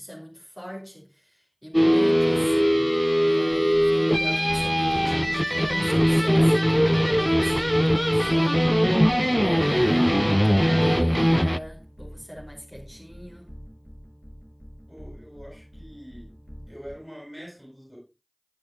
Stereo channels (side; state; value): both; identical; correlation 1.00